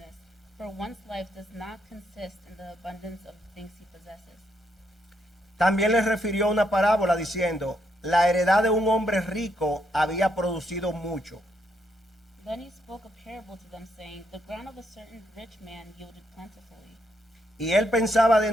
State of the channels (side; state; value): both; normal; correlation 0.76